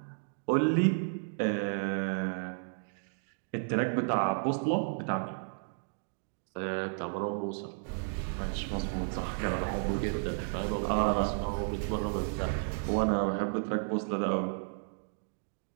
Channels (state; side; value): silent; left; digital silence